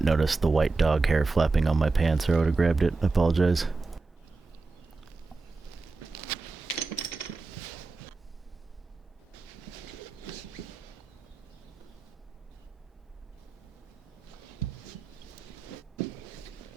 notice the white dog hair flapping on my pants, or I would have grabbed it. I apologize.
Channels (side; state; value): left; quieter; 3.9 dB